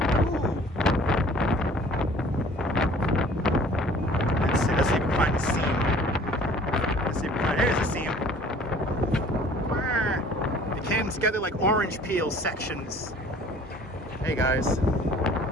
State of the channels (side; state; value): both; normal; correlation 0.51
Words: Ooh. Let's see if we can find a seam. There's a seam. It came together like orange peel sections. Hey guys,